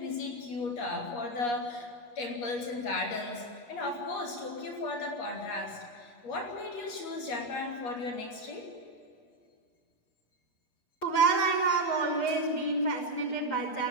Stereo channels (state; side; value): late; right; 8.4 ms